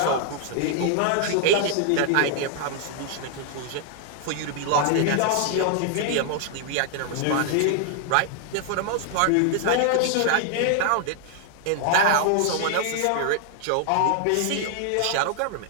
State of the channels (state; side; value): different; both; correlation -0.01